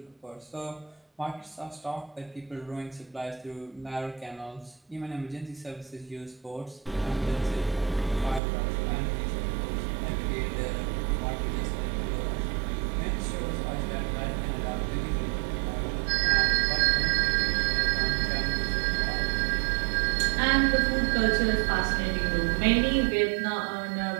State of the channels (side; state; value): left; drops out; at 8.4 s